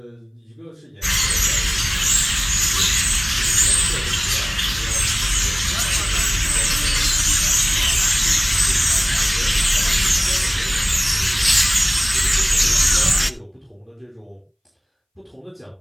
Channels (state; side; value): identical; both; correlation 1.00